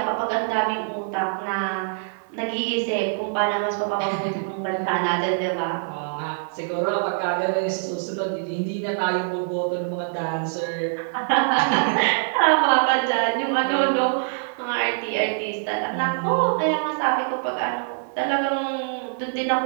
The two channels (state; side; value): silent; left; digital silence